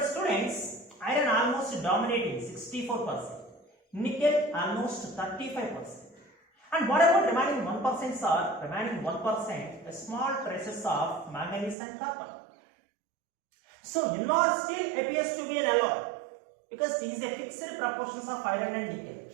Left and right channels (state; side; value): drops out; left; at 11.8 s